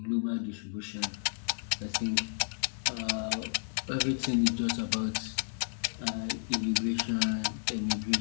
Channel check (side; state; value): right; silent; digital silence